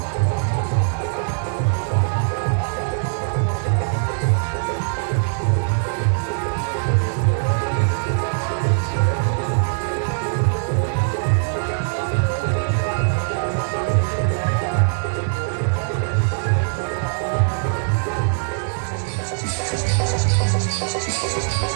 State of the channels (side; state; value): left; silent; digital silence